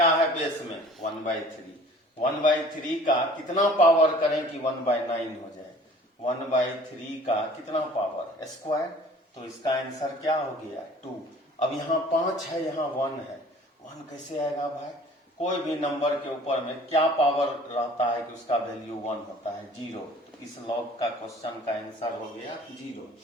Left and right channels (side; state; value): both; normal; correlation 0.49